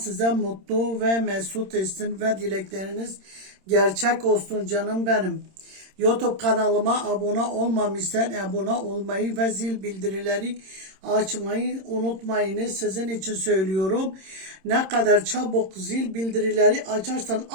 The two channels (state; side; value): late; left; 26 ms